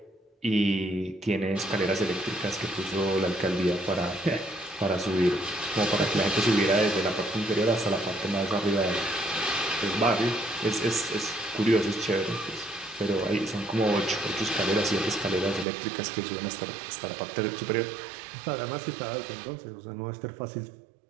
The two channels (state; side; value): drops out; left; at 15.7 s